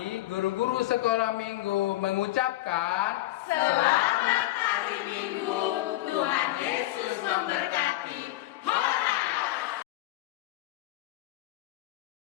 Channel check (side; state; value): right; quieter; 16.7 dB